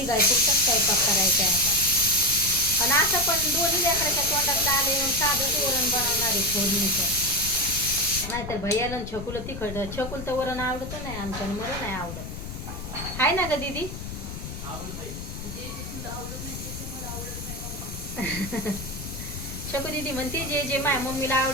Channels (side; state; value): left; noise; rumble, 9 dB below the sound